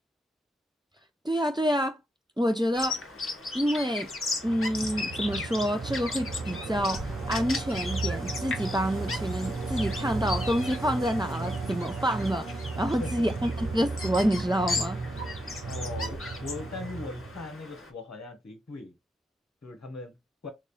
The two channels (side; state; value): both; normal; correlation 0.82